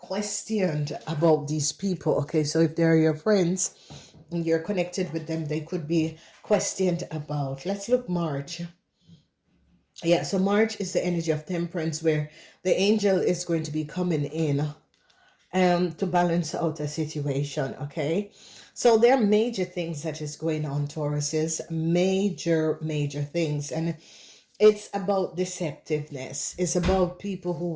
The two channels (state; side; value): identical; both; correlation 1.00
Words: about these people. Okay, so if they're your friends and you're connected with them, they could be questioned about. Let's look March. Yeah, so March is the energy of temperance, where the angel is going to be coming in to balance out a situation, okay? So there are major things that is going on, Tauruses, major things. And it's about deceptiveness. It's about people who